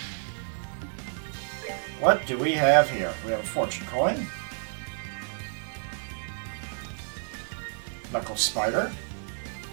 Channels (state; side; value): silent; left; digital silence